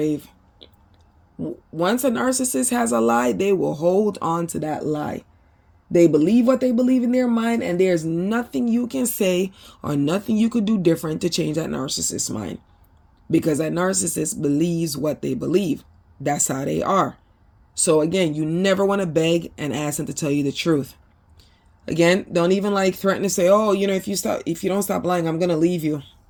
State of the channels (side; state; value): both; identical; correlation 1.00